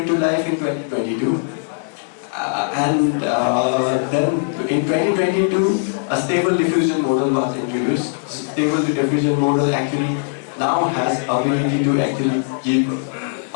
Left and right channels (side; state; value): right; silent; digital silence